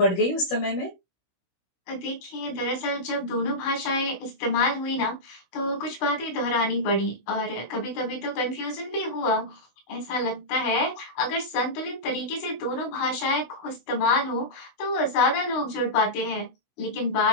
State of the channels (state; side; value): late; right; 16 ms